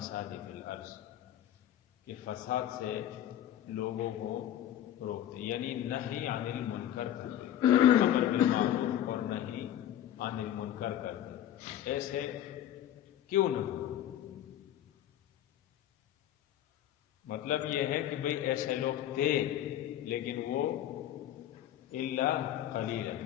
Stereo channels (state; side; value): quieter; right; 11.6 dB